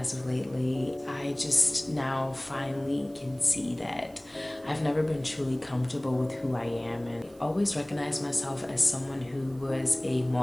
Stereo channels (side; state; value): right; noise; hiss, 27 dB below the sound